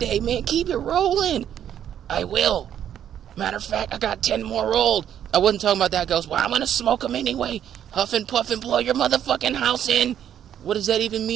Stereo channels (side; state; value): left; quieter; 9.9 dB